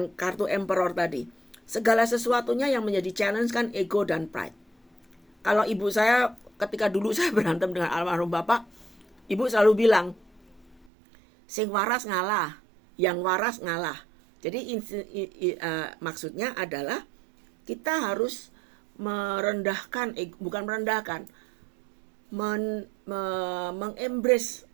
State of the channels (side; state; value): left; drops out; at 10.9 s